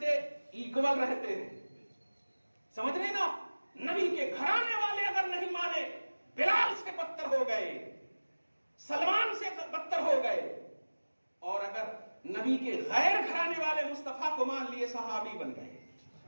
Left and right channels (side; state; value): both; inverted; correlation -1.00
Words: ایکول رہتے ہیں، سمجھ رہے نا؟ نبی کے گھرانے والے اگر نہیں مانے، بلال سے بدتر ہو گئے، سلمان سے بدتر ہو گئے، اور اگر نبی کے غیر گھرانے والے مصطفیٰ کو مان لیے، صحابی بن گئے۔